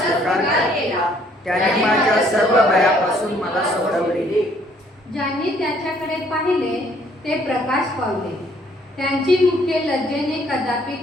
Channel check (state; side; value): normal; both; correlation 0.63